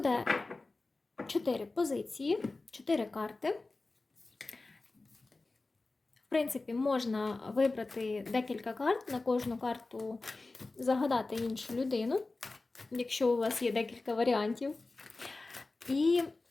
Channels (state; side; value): quieter; right; 3.4 dB